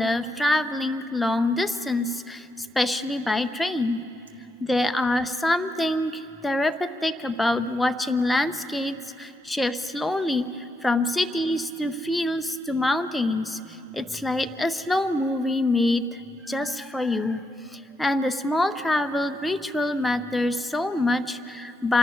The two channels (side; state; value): both; normal; correlation 0.82